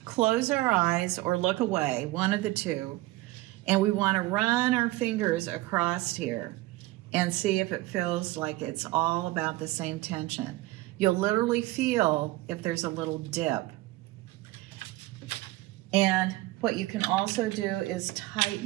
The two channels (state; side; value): quieter; left; 19.0 dB